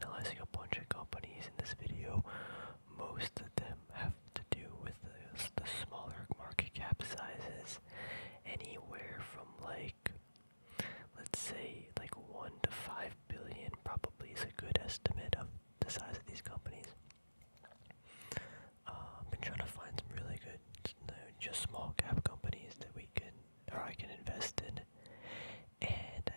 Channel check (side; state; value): both; inverted; correlation -1.00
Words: analyzing a bunch of companies in this video. Most of them have to do with the smaller market cap sizes, anywhere from like, let's say like 1 to 5 billion probably is a good estimate of the size of these companies. I've been trying to find some really good, just small cap companies that I can invest in, and